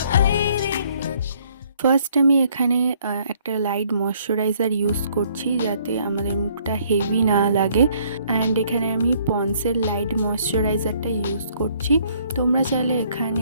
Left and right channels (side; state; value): both; inverted; correlation -0.63